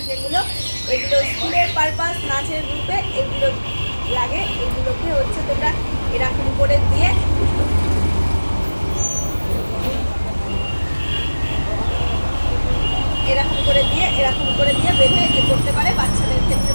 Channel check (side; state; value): both; inverted; correlation -1.00